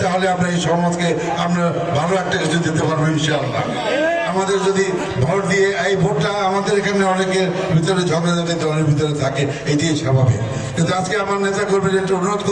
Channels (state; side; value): noise; right; rumble, 25 dB below the sound